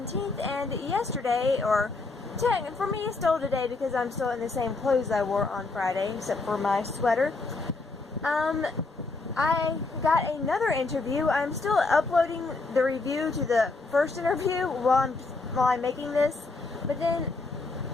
and yesterday, or for me it's still today because I'm still in the same clothes I wore on Friday, except for my sweater. I got another interview. I'm still uploading the review to the first interview while I'm making this, but then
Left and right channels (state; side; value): quieter; right; 3.7 dB